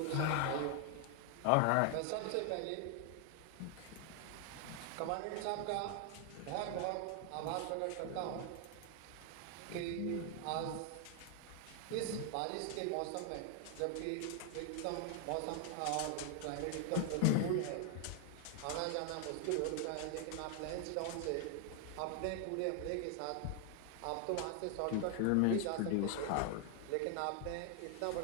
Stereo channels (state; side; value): different; both; correlation 0.00